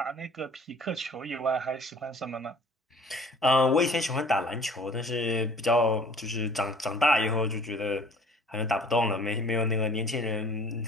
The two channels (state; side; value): normal; both; correlation 0.52